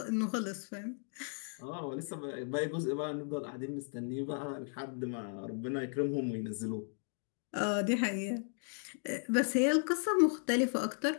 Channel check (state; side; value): silent; right; 54 dB below the other